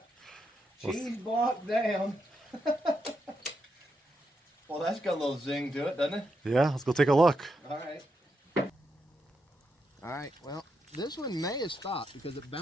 Cheese block down. Well, that's got a little zing to it, doesn't it? Yeah, let's go take a look. All right. All right, well, this one may have stopped because it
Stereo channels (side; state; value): both; normal; correlation 0.82